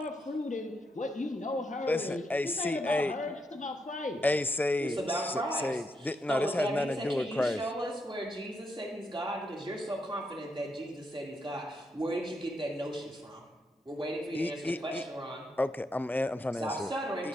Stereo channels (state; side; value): normal; both; correlation 0.80